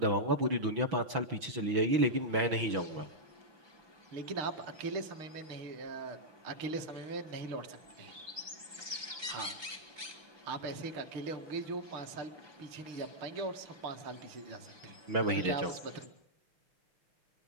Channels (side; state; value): left; late; 6.1 ms